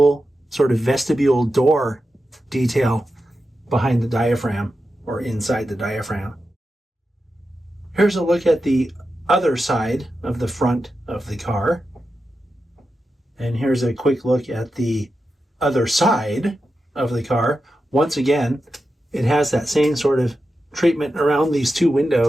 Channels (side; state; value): both; normal; correlation 0.90